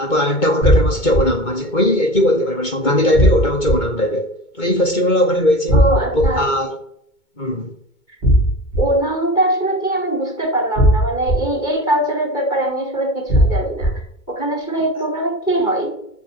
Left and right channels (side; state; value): right; late; 2.2 ms